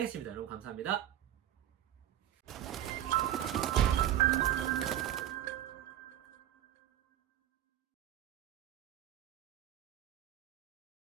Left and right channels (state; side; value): quieter; left; 11.9 dB